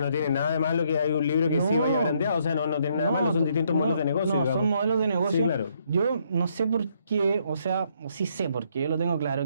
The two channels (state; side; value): inverted; both; correlation -0.71